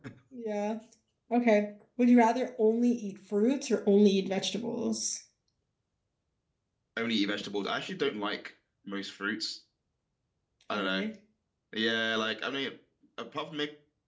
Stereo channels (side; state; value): both; identical; correlation 1.00